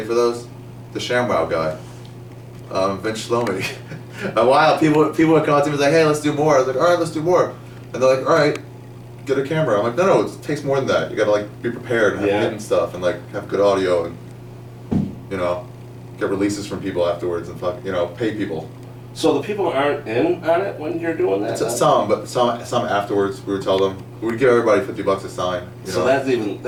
for those? The ShamWow guy. Vince Shlomi. A while, people would come up to me and be like, hey, let's do more. I was like, all right, let's do more. And they're like, all right, get a camera. I'm like, no, it takes more than that. You gotta like be prepared and have Yeah. hidden stuff and like have good audio and, get releases from people afterwards and pay people. So the people aren't in on it when you're doing that? Some, but some afterwards. We would tell them we'd give everybody $50 a sign. So that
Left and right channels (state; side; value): identical; both; correlation 1.00